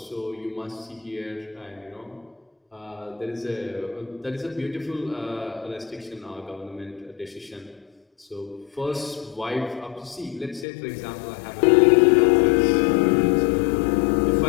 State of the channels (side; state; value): right; drops out; at 10.7 s